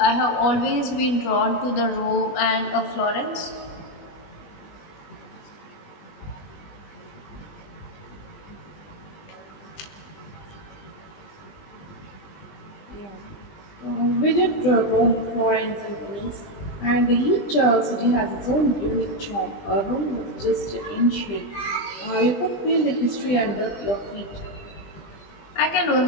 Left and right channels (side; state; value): right; late; 20 ms